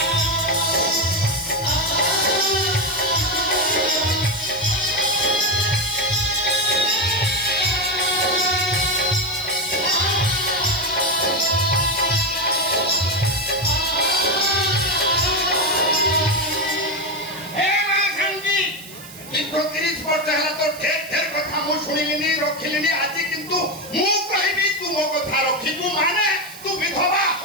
ଦୀର୍ଘ 30 ବର୍ଷ ହେଲା ତ ଢେର କଥା ମୁଁ ଶୁଣିଲିନି, ରଖିଲିନି। ଆଜି କିନ୍ତୁ ମୁଁ କହିବି ତୁ ମୋ କଥା ରଖିବୁ ମାନେ ତୁ ବିଧବା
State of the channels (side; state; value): right; noise; hiss, 16 dB below the sound